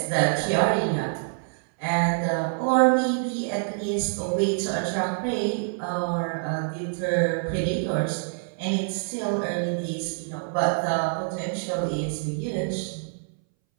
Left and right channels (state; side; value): silent; left; 61 dB below the other